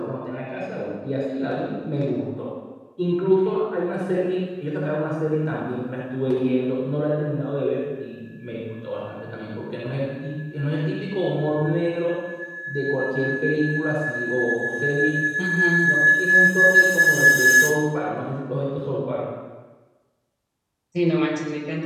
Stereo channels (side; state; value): both; identical; correlation 1.00